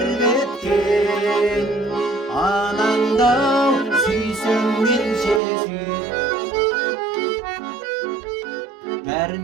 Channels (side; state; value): left; drops out; at 5.4 s